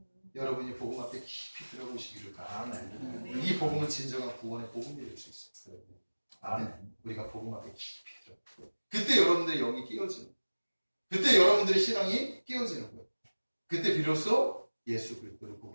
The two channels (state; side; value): inverted; both; correlation -1.00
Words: 여러분이 복음 앞에 깊이 들어보시기를 바랍니다. 이 복음은 진정한 구원의 복음이 될 수 있어요. 아멘. 우리가 복음 앞에 깊이 들어. 그때 여러분들의 영이 끼어지는, 그때 여러분들의 신앙이 끼어지는 거예요. 그때 비로소 예수 그리스도를